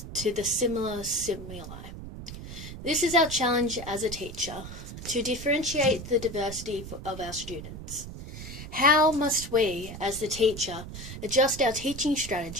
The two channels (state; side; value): noise; right; rumble, 11 dB below the sound